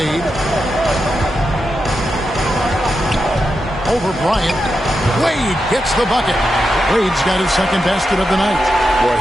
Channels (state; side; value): normal; both; correlation 0.87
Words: Over Bryant. Wade gets the bucket. Wade's got his second basket of the night. Well,